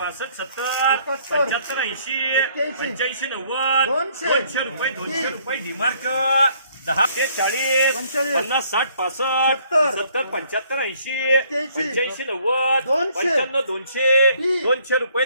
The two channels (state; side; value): inverted; both; correlation -0.63